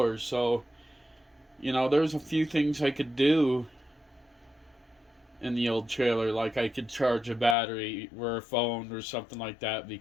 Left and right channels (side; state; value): right; drops out; at 7.6 s